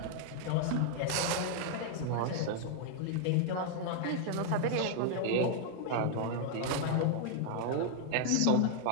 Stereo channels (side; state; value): both; different; correlation 0.00